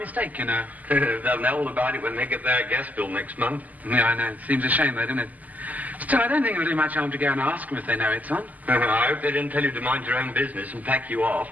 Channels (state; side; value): late; left; 0.079 ms